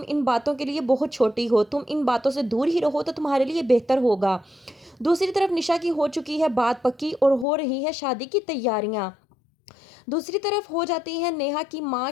इन बातों के लिए बहुत छोटी हो, तुम इन बातों से दूर ही रहो तो तुम्हारे लिए बेहतर होगा। दूसरी तरफ निशा की हो चुकी है बात पक्की और हो रही है शादी की तैयारियां। दूसरी तरफ हो जाती है नेहा की माँ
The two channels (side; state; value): right; drops out; at 7.5 s